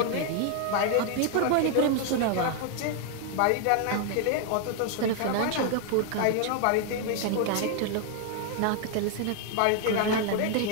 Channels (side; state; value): both; different; correlation 0.00